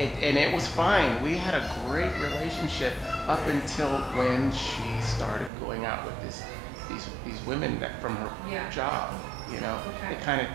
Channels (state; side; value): drops out; left; at 5.5 s